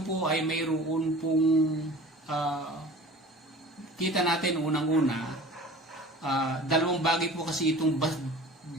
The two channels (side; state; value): both; normal; correlation 0.41